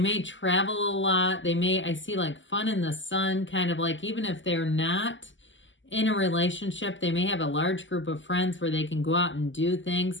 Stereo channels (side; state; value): right; late; 0.55 ms